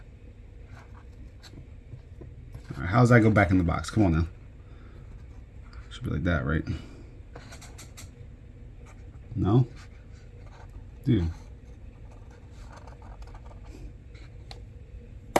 All right, how does that go back in the box? Come on now. Should be like that, right? No, dude.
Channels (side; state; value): both; identical; correlation 1.00